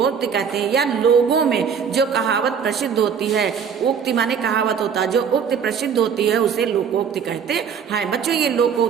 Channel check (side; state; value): left; quieter; 7.0 dB